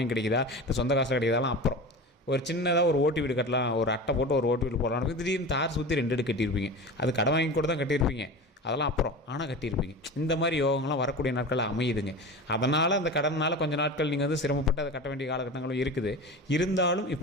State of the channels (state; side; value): normal; both; correlation 0.30